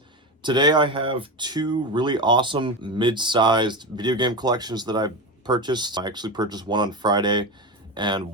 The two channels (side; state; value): both; normal; correlation 0.19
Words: Today I have two really awesome mid-sized video game collections that I purchased. I actually purchased one on Friday and